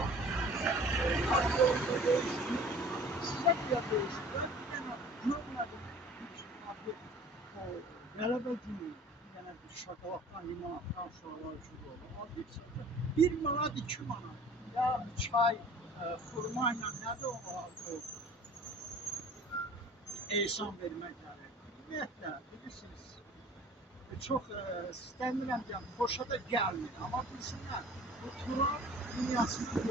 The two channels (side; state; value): both; normal; correlation 0.47